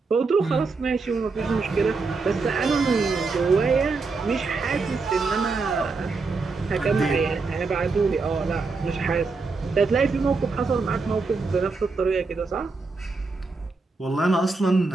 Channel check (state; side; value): quieter; left; 4.1 dB